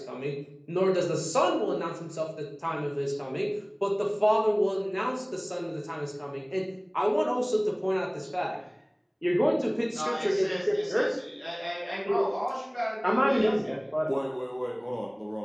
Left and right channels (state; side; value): identical; both; correlation 1.00